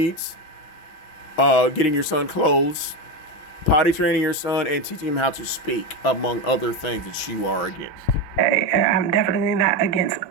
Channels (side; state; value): right; late; 6.1 ms